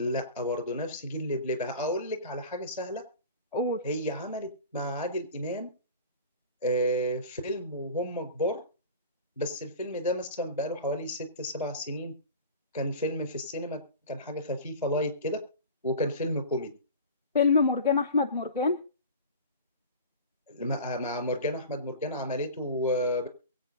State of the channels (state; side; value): inverted; both; correlation -0.36